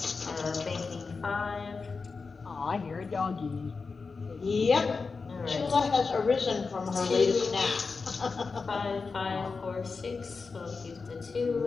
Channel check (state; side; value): quieter; right; 4.6 dB